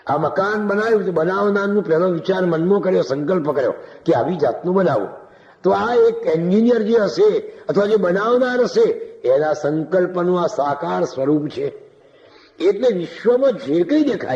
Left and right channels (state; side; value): identical; both; correlation 1.00